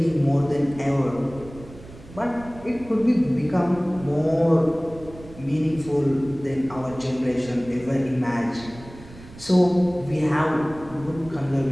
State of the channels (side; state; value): right; noise; rumble, 18 dB below the sound